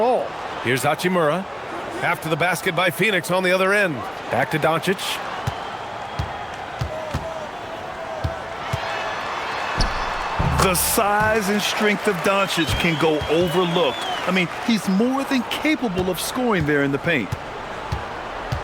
Here's Hachimura. After the basket by Phoenix on the other end. Back to Doncic. The size and strength of Doncic can go overlooked. I mean, he's more than capable of scoring there in the paint.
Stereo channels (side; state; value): both; identical; correlation 1.00